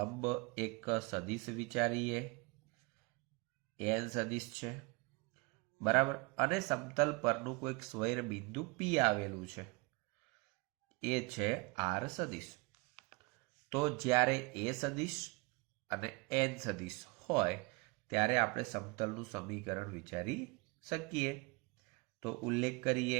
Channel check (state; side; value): quieter; left; 27.7 dB